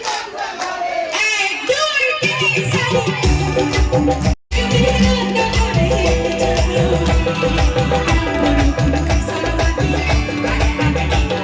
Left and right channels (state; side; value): identical; both; correlation 1.00